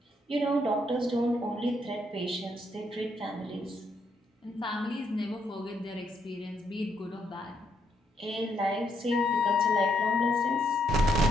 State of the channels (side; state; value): both; normal; correlation 0.75